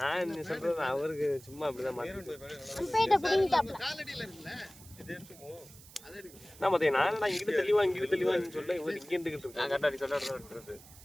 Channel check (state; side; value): noise; right; hiss, 20 dB below the sound